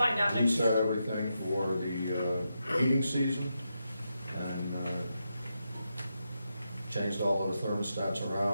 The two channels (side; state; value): both; inverted; correlation -0.85